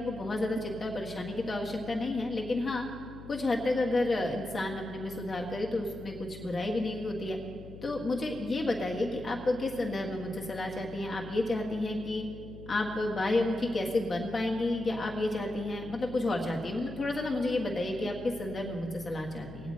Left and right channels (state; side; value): noise; left; hum, 14 dB below the sound